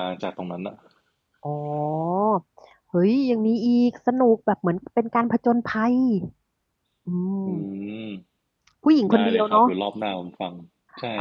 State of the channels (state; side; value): identical; both; correlation 1.00